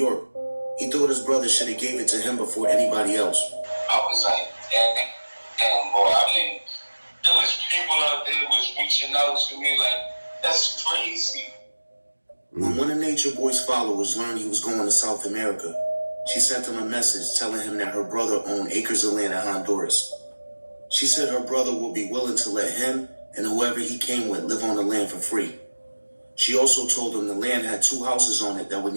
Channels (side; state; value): both; inverted; correlation -1.00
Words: he thought his brother should have gave it to him before anybody else. I was like, damn, boy, I mean, there was people out there was reaching out to me like, that's crazy. When one of Natureboy's followers learned he was going to South America, she sent him a message telling him that her brother owned acres of land in Honduras. She said her brother would be willing to let him and whoever he came with live on the land for free. She also told him the land had 2 houses on it that would